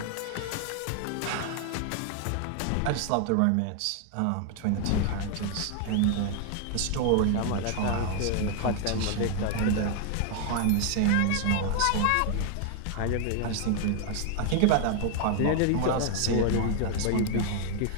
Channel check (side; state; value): both; different; correlation 0.00